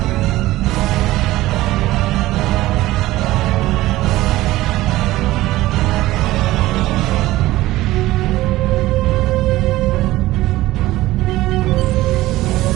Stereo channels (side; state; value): left; quieter; 17.0 dB